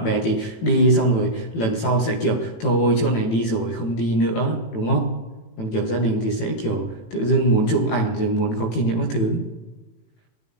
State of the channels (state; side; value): late; right; 18 ms